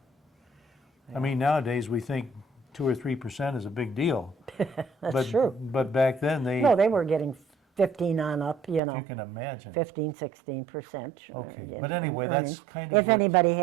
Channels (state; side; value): drops out; left; at 8.8 s